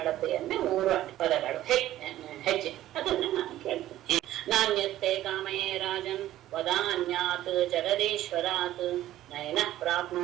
ಅಳತೆಯನ್ನೇ 3 ಪದಗಳು ಹೆಜ್ಜೆ ಅದನ್ನ ನಾನು ಕೇಳ್ತೇನೆ. ನಾಣ್ಯತೆ ಕಾಮಯೇ ರಾಜನ್ ವದಾನ್ಯಾತ್ ಜಗದೀಶ್ವರಾತ್ ನಯನ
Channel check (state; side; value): quieter; left; 13.9 dB